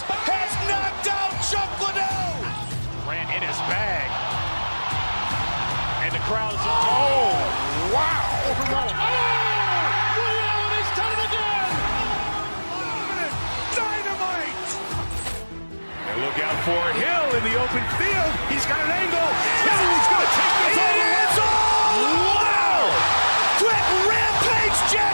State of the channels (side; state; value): both; inverted; correlation -1.00